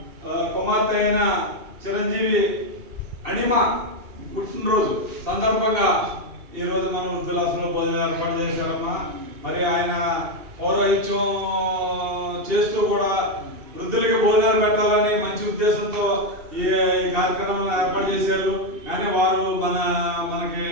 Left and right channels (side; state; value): left; late; 2.7 ms